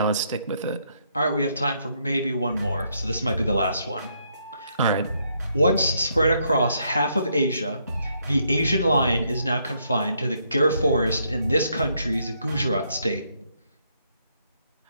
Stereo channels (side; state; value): both; inverted; correlation -0.74